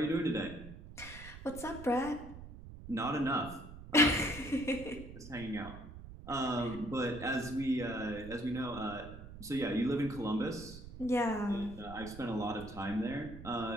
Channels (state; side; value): noise; right; rumble, 14 dB below the sound